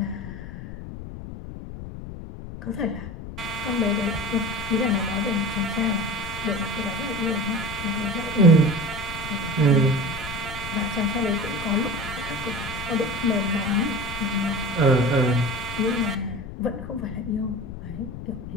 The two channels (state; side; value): noise; left; rumble, 10 dB below the sound